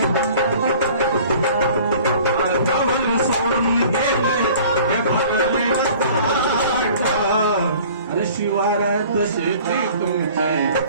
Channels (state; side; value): inverted; both; correlation -0.48